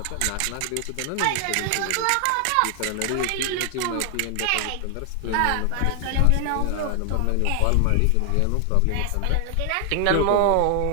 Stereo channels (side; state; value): both; different; correlation 0.00